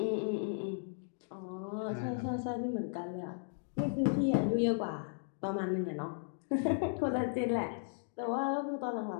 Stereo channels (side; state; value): right; silent; digital silence